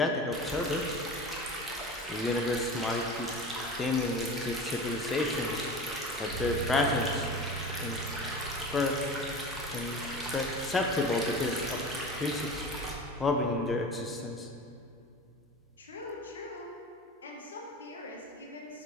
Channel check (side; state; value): both; normal; correlation 0.33